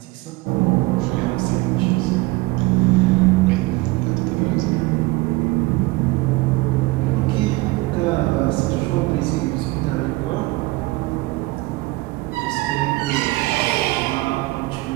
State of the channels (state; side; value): quieter; left; 21.5 dB